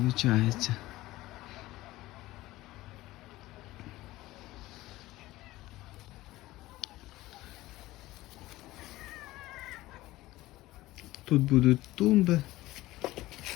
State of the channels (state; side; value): quieter; right; 17.6 dB